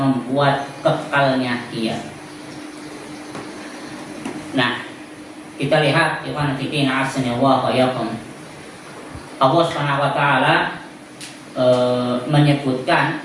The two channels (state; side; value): identical; both; correlation 1.00